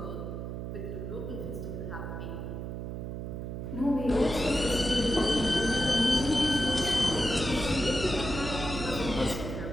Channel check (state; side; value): noise; right; hum, 6 dB below the sound